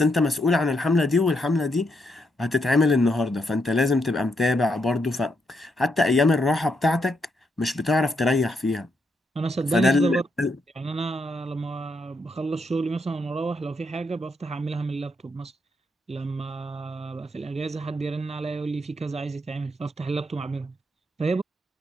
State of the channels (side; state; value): both; normal; correlation 0.79